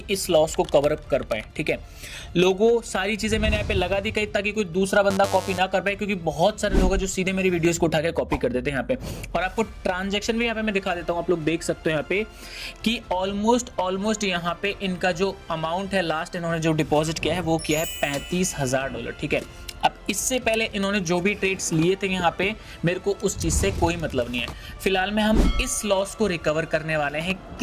इस लॉस को कवर अप कर पाए। ठीक है, लोगों सारी चीजें मैंने यहाँ पे लगा दी कहीं, ताकि कोई दूसरा बंदा कॉपी ना कर पाए, क्योंकि बहुत सारे लोग हैं जो सीधे मेरी वीडियोस को उठा के कॉपी कर देते हैं यहाँ पे। और आपको ट्रांजेक्शन भी यहाँ पे मैं दिखा देता हूँ, आप लोग देख सकते हो यहाँ पे कि ऑलमोस्ट यहाँ पे इनका जो अमाउंट है, लास्ट इन्होंने जो डिपॉजिट किया है वो किया है $35,000। ठीक है, अब इससे पहले इन्होंने जो भी ट्रेड्स लिए थे यहाँ पे, मेरे को उस चीज़ से कोई मतलब नहीं है। फिलहाल में हम इस लॉस को रिकवर करने वाले हैं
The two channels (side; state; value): both; identical; correlation 1.00